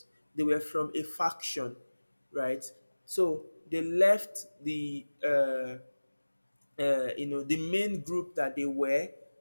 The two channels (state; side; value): inverted; both; correlation -1.00